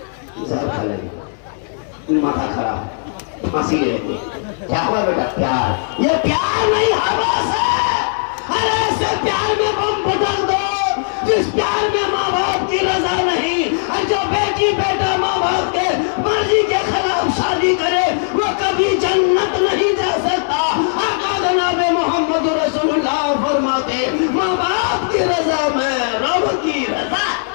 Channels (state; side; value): silent; right; digital silence